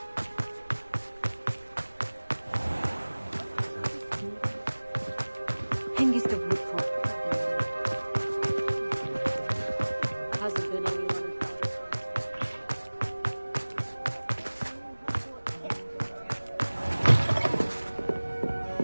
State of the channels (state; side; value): inverted; both; correlation -1.00